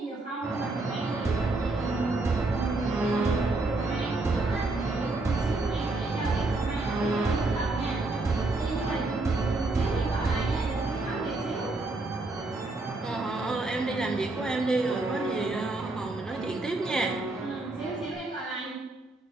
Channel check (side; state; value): left; quieter; 3.0 dB